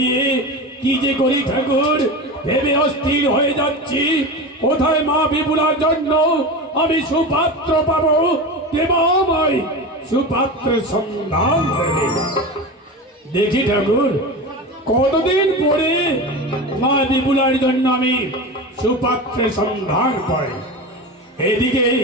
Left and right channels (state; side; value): normal; both; correlation 0.26